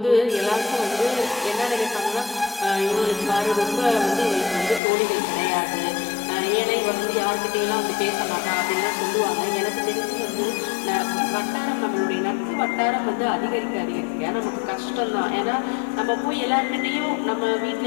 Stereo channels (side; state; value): right; drops out; at 4.8 s